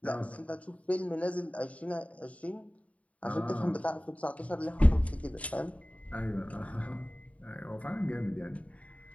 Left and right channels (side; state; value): right; late; 0.067 ms